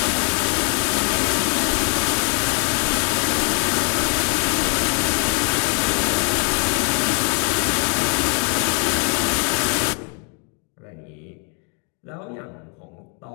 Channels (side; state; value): right; quieter; 39.5 dB